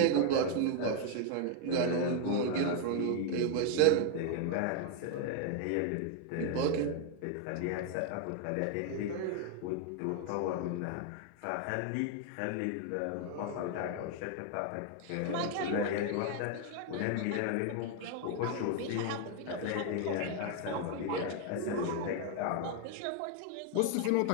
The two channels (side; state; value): both; different; correlation 0.01